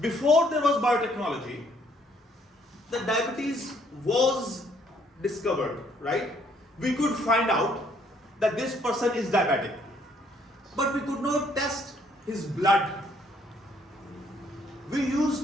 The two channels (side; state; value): both; normal; correlation 0.66